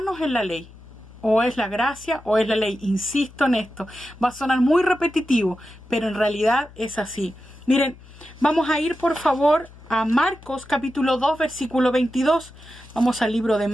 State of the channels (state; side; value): noise; left; hum, 21 dB below the sound